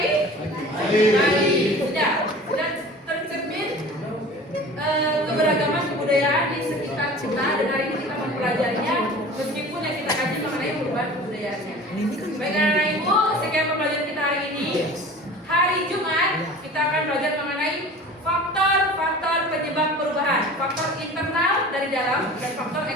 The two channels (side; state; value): both; normal; correlation 0.40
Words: Bali. Sudah tercermin keberagaman kebudayaan di sekitar kita, dan hari ini kita mempelajarinya meskipun yang kita kaji mengenai perubahan kebudayaannya. Baik anak-anak ibu, sekian pembelajaran kita hari ini. Hari Jumat kita akan belajar mengenai faktor-faktor penyebab perubahan, faktor internal dari dalam dan faktor